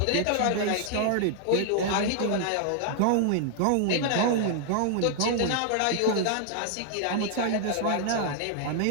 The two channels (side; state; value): both; different; correlation 0.00